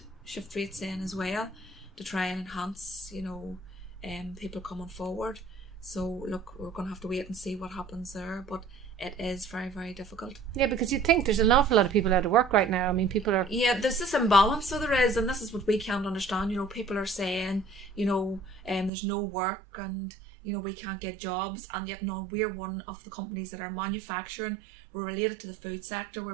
shift rates in as well, to try and enhance, people coming forward. So look, we're going to have to wait and see what happens there, but it is very, very difficult. Yeah, because you think there's an awful lot of people out of work right now. I mean, people are... Yeah, there's this imbalance, so there is, and this is what we can't understand. People are saying, there's no work and, we can't get jobs, and yet no, we're one of the companies that are manufacturing. We're related to the food sector.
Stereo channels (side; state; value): left; drops out; at 18.9 s